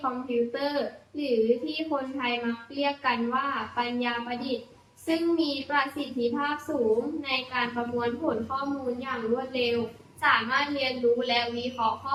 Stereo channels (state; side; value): identical; both; correlation 1.00